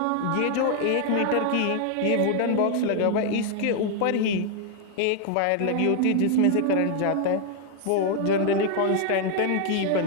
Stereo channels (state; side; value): different; both; correlation 0.00